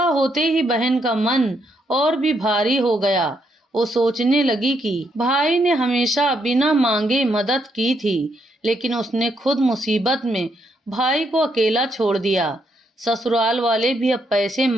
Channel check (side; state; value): both; normal; correlation 0.76